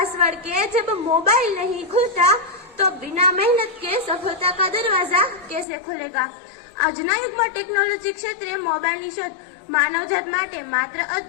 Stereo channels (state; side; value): drops out; right; at 5.7 s